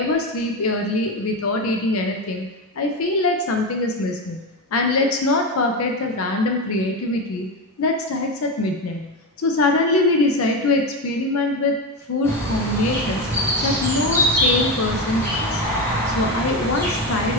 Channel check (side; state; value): both; normal; correlation 0.16